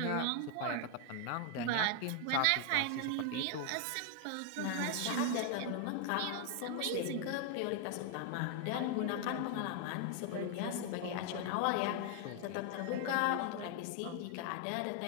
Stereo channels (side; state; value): both; different; correlation 0.00